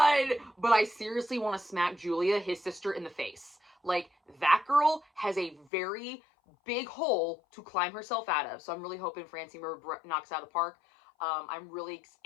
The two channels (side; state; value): right; drops out; at 5.7 s